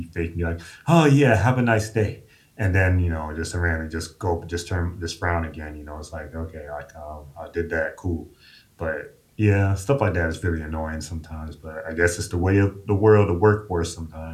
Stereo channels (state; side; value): identical; both; correlation 1.00